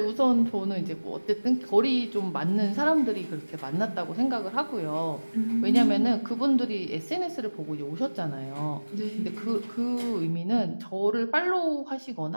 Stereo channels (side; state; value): both; inverted; correlation -1.00